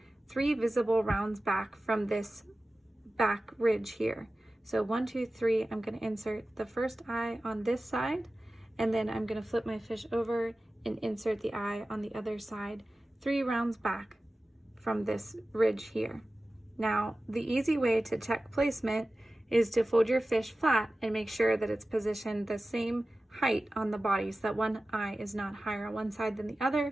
3 visible rounds back from this back ridge here. So 1, 2, 3, I'm going to insert the first eye on this side, and then I'm going to flip my fish over and insert the eye on the other side 3 rounds back from this ridge here. Now, the easy way to check placement is to fold your fish flat and make sure that it's positioned the same height on the body so that one eye is not higher on one side than the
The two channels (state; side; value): normal; both; correlation 0.96